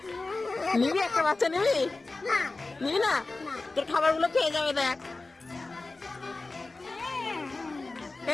নিবি একটা বাচ্চা, নিবি? নিবি না? তোর খাবার গুলো খেয়ে যাবে দেখ।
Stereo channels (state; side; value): quieter; right; 3.4 dB